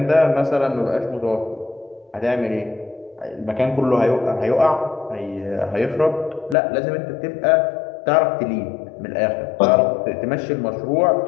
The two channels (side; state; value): right; drops out; at 6.6 s